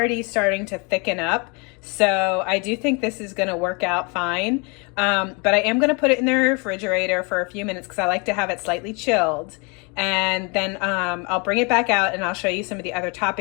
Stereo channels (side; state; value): right; quieter; 31.9 dB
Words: starting to thicken up. So I do think this is going to work out fine. But I am going to put it in the refrigerator for a few minutes because I like to have it slightly chilled. And then I'll bring it back out and I'll show you some of the other